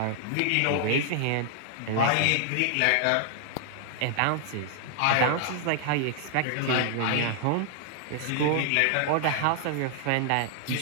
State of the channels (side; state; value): both; different; correlation 0.00